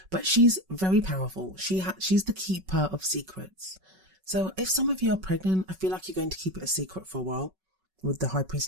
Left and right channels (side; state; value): left; late; 5.3 ms